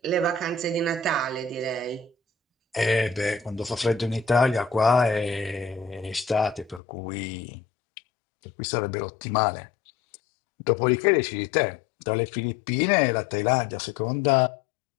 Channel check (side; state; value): right; drops out; at 6.8 s